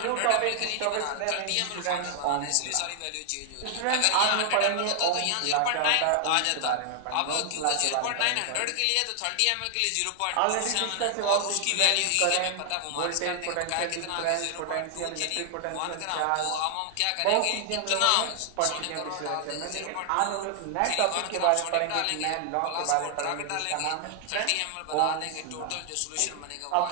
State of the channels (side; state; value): both; different; correlation 0.00